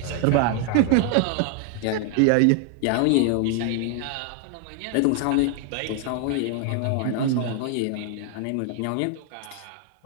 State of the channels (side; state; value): both; different; correlation 0.00